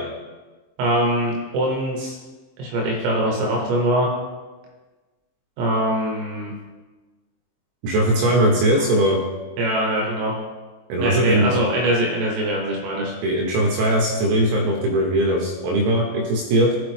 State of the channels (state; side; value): late; left; 23 ms